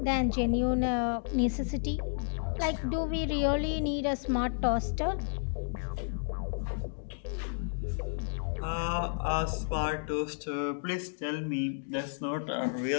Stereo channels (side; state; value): right; silent; digital silence